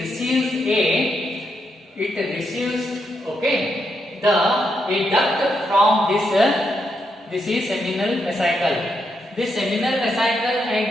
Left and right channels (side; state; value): both; normal; correlation 0.80